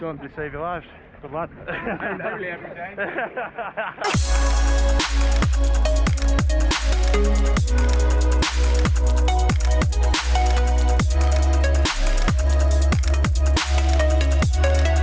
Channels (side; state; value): both; identical; correlation 1.00